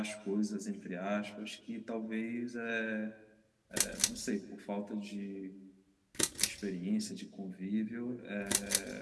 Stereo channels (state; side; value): identical; both; correlation 1.00